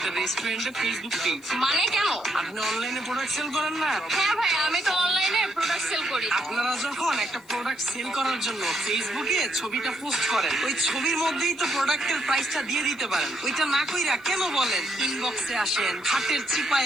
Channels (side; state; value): left; noise; hiss, 28 dB below the sound